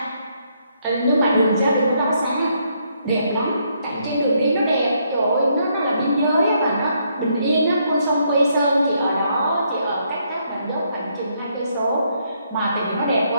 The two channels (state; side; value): inverted; both; correlation -0.73